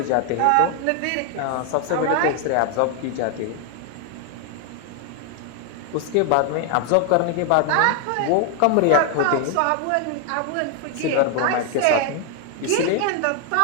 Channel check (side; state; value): both; different; correlation 0.00